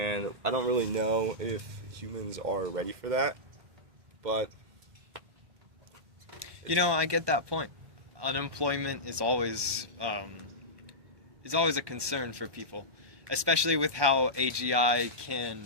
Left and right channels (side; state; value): left; late; 1.2 ms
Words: I don't really know if humans are ready for that, but... You know, I get that point. Unemployment is always a concern for people, especially with how AGI